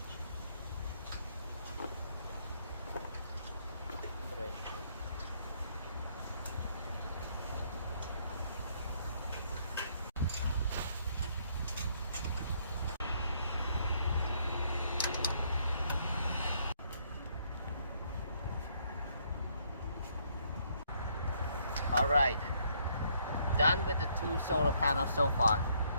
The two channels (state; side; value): inverted; both; correlation -0.69